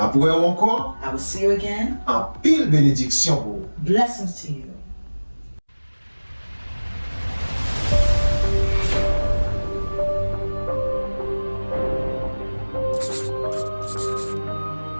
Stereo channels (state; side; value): inverted; both; correlation -1.00